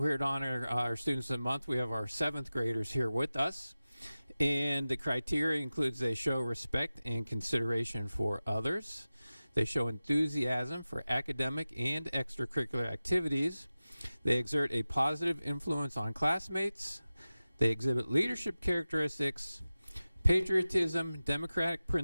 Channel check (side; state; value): both; inverted; correlation -0.96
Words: to honor our Students of the Month, we have our 7th graders here with us. And the criteria includes they show respect and consideration for others. They show enthusiasm for academic and extracurricular activities. They exert a positive influence on classmates. They exhibit leadership characteristics, patriotism, democratic